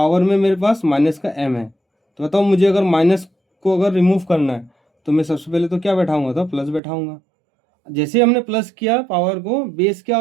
में मेरे पास माइनस का m है, तो बताओ मुझे अगर माइनस को अगर रिमूव करना है तो मैं सबसे पहले तो क्या बैठाऊंगा? तो प्लस बैठाऊंगा। जैसे हमने प्लस किया पावर को, बेस क्या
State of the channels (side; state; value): left; drops out; at 6.8 s